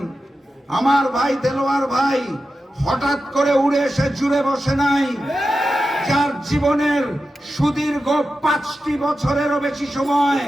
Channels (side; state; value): both; normal; correlation 0.91